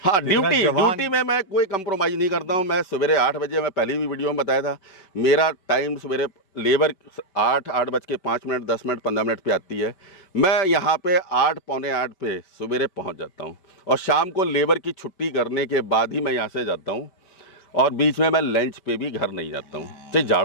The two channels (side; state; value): right; late; 5.2 ms